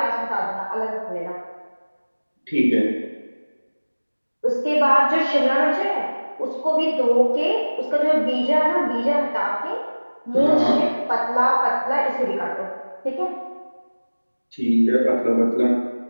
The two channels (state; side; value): inverted; both; correlation -1.00